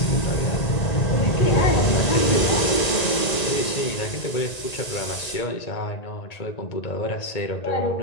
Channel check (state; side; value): late; right; 1.9 ms